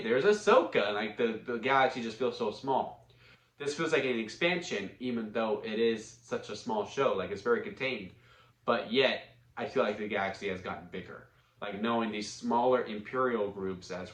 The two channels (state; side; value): identical; both; correlation 1.00